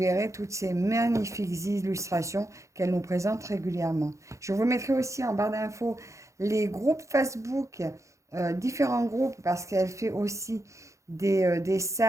toutes ces magnifiques illustrations qu'elle nous présente régulièrement. Je vous mettrai aussi en barre d'infos les groupes Facebook, différents groupes, parce qu'elle fait aussi des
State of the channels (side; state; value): left; late; 0.15 ms